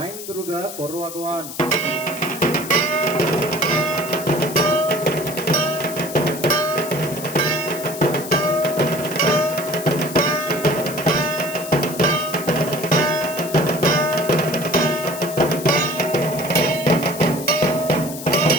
দুর্গা করো আগওয়ান।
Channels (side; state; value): left; noise; hiss, 11 dB below the sound